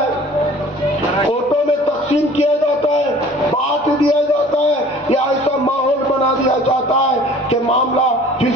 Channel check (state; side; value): normal; both; correlation 0.49